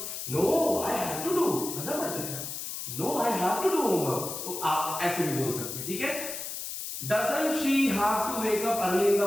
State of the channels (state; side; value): noise; left; hiss, 6 dB below the sound